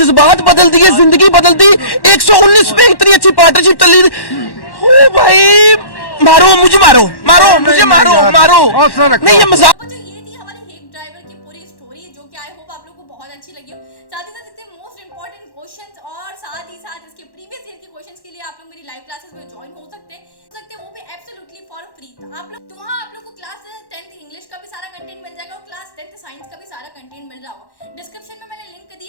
बदल दिए, जिंदगी बदल दी। 119 पे इतनी अच्छी पार्टनरशिप चल रही थी। ओ भाई मारो मुझे, मारो मारो मुझे, मारो मारो नहीं, ये मजाक। जो ये थी हमारे हेग ड्राइवर की पूरी स्टोरी, जो कि आई होप आप लोगों को बहुत अच्छी लगी हो। साथ ही साथ इतने मोस्ट इंपॉर्टेंट क्वेश्चंस और साथ ही साथ इसके प्रीवियस ईयर के क्वेश्चंस के लिए आप लोग मेरी लाइव क्लासेस में ज्वाइन हो सकते हैं, वो भी एब्सोल्युटली फॉर फ्री। आप लोग तो वहाँ आप लोग को क्लास 10th इंग्लिश का भी सारा कंटेंट मिल जाएगा और क्लास 10th साइंस का भी सारा कंटेंट मिल रहा होगा। डिस्क्रिप्शन में मैंने लिंक दी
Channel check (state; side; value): late; right; 1.1 ms